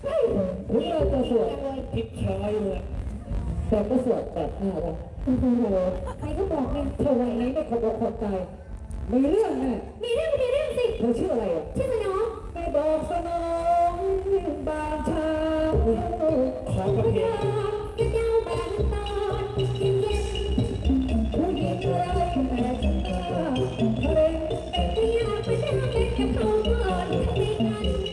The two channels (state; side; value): identical; both; correlation 1.00